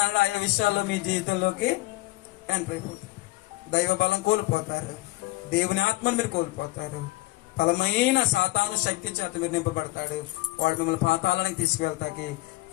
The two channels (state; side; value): quieter; right; 20.4 dB